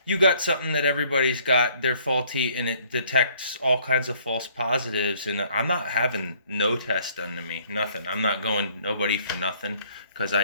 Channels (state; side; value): inverted; both; correlation -0.61